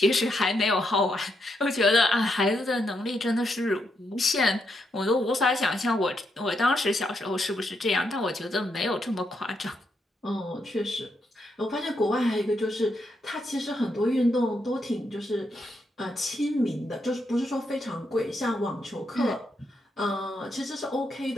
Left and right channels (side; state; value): both; normal; correlation 0.80